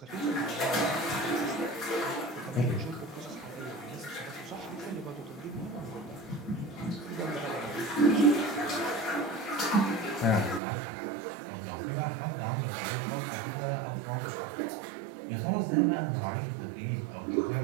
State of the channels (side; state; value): left; drops out; at 10.6 s